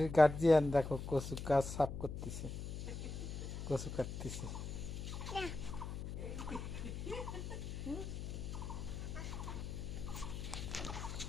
গার্জিয়ান দেখো কচু গাছ সাফ করতেছে, কচু কাটতেছে।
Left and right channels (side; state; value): left; noise; hum, 6 dB below the sound